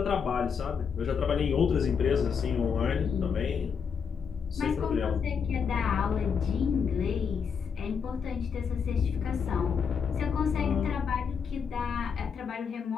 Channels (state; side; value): quieter; right; 6.5 dB